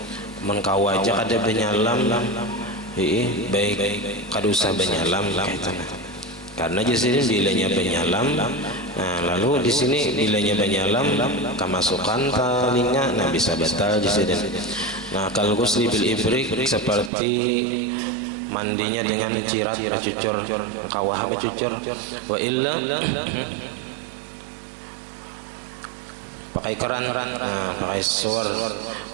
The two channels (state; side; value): drops out; left; at 17.1 s